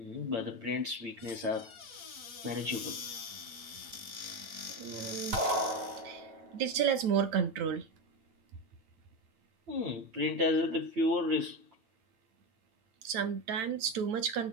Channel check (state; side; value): late; left; 9.0 ms